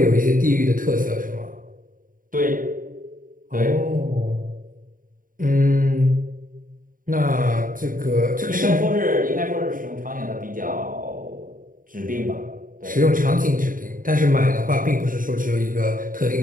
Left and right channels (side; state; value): left; late; 0.40 ms